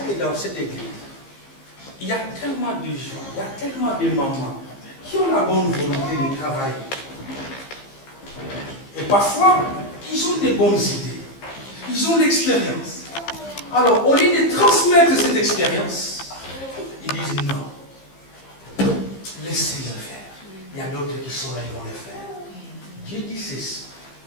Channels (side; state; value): right; late; 15 ms